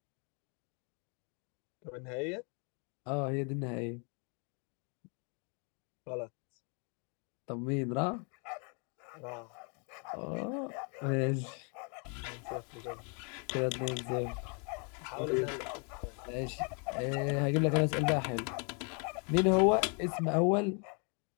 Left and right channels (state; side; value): quieter; right; 36.9 dB